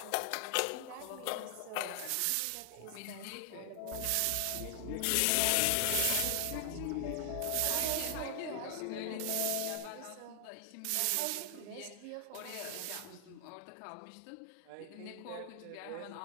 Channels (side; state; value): both; different; correlation 0.00